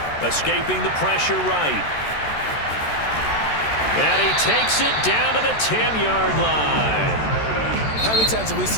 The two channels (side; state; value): right; late; 14 ms